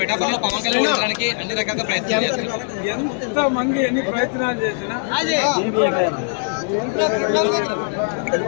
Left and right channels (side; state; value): right; silent; 65 dB below the other